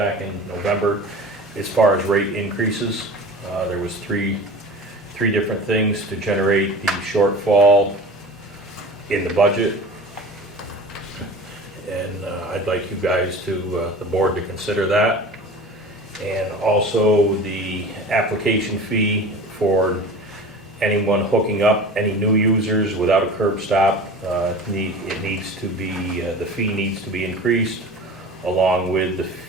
in November as far as rate increases. There was three different things to generate the shortfall in the budget. And I'd like you guys the board to consider that. And also the application fee for anyone hooking up, any new users without a curb stop, the fee needs to be increased, along with the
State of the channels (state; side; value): normal; both; correlation 0.36